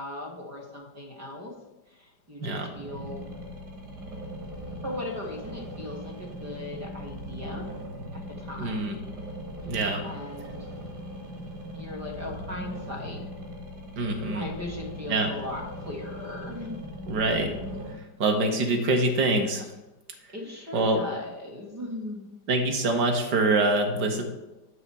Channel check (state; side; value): late; left; 5.0 ms